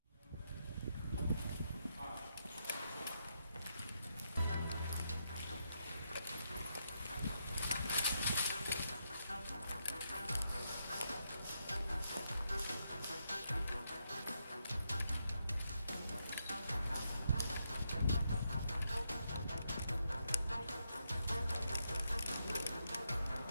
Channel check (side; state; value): both; inverted; correlation -0.81